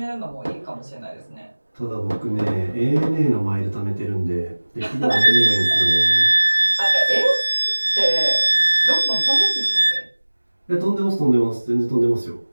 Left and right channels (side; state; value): both; inverted; correlation -1.00